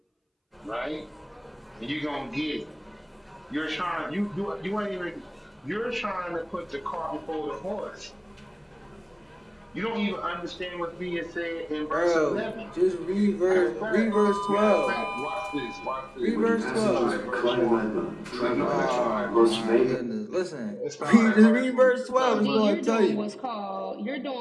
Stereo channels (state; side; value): identical; both; correlation 1.00